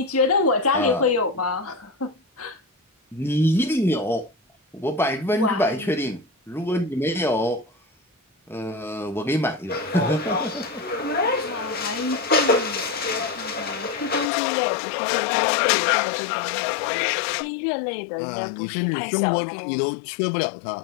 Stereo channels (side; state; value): right; drops out; at 14.3 s